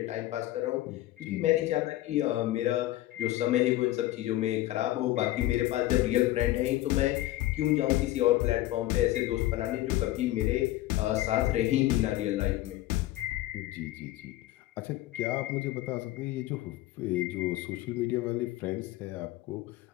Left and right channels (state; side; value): quieter; right; 16.0 dB